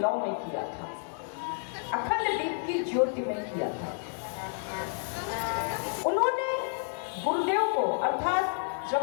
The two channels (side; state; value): right; silent; 58 dB below the other